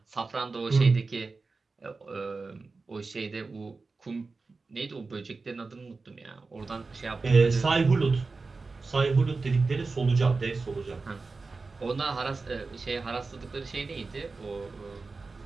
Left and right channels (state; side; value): quieter; left; 4.0 dB